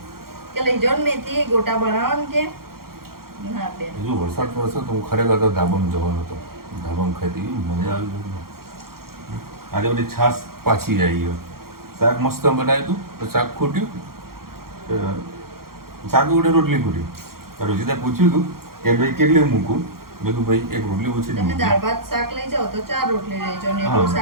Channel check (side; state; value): left; late; 0.93 ms